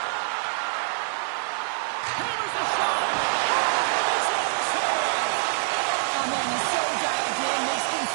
Hammers the shot. It's on the save. Oh, man, he's so dialed in. Makes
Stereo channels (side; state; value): left; silent; digital silence